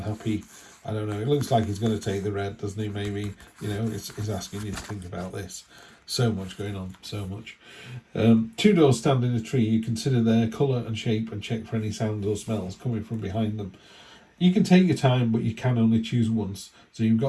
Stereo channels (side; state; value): both; identical; correlation 1.00